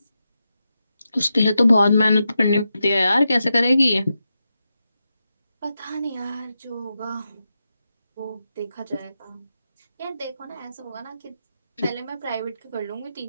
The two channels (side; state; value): both; inverted; correlation -0.88